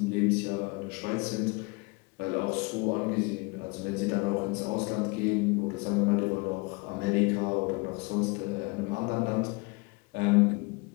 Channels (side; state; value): right; quieter; 28.2 dB